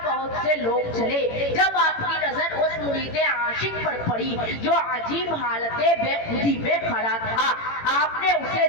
بہت سے لوگ چلے۔ جب آپ کی نظر اس مرید عاشق پر پڑی جو عجیب حالت بے خودی میں کھڑا تھا، آپ نے اسے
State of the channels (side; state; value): right; late; 18 ms